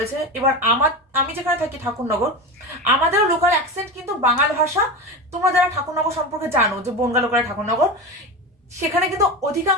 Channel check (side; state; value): both; normal; correlation 0.23